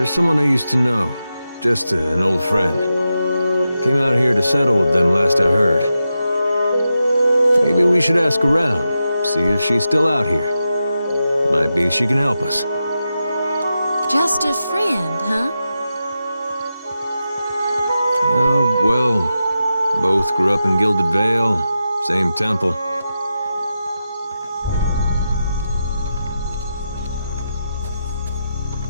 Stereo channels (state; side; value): inverted; both; correlation -0.89